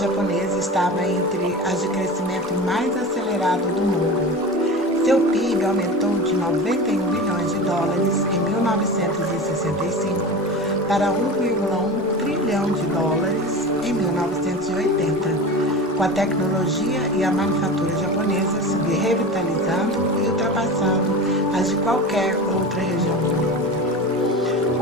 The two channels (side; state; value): both; normal; correlation 0.30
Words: estava entre as de crescimento mais acelerado do mundo. Seu PIB aumentou de 91 bilhões de dólares em 1965 para 1,1 trilhão de dólares em 1980, com a tecnologia e a manufatura japonesa se revitalizando e ultrapassando as de qualquer outra região do mundo.